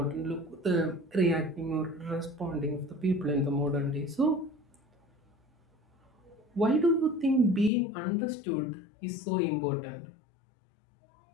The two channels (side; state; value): right; drops out; at 7.7 s